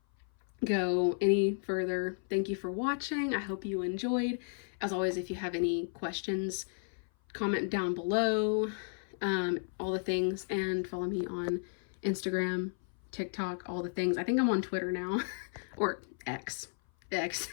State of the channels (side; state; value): right; silent; 55 dB below the other